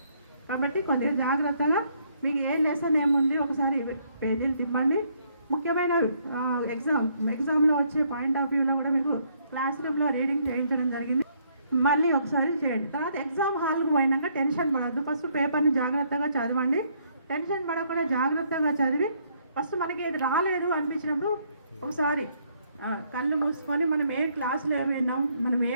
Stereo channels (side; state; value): both; inverted; correlation -0.69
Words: కాబట్టి కొద్దిగా జాగ్రత్తగా మీకు ఏ లెసన్ ఏముంది ఒకసారి పేజీలు తిప్పండి. ముఖ్యమైన ఎగ్జామ్లో వచ్చే పాయింట్ ఆఫ్ వ్యూలో కూడా మీకు క్లాస్ రూమ్లో రీడింగ్ చేయించడం జరిగింది. మళ్ళీ ఒకసారి చేయండి. తర్వాత ఎగ్జామ్ హాల్కి పోయినాక టెన్షన్ పడద్దు. ఫస్ట్ పేపర్ని జాగ్రత్తగా చదవండి. టెన్షన్ పడకుండా జాగ్రత్తగా చదివి ఫస్ట్ మనకి ఏది రాలేదు అనిపించినప్పుడు ఒకసారి కళ్ళు మూసుకొని మనం ఏ క్లాసులో ఏమి విన్నాం, మనం